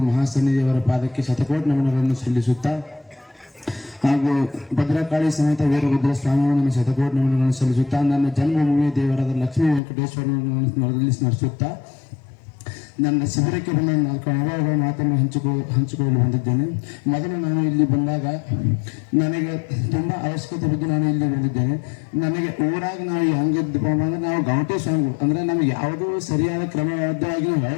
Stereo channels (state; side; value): drops out; right; at 9.8 s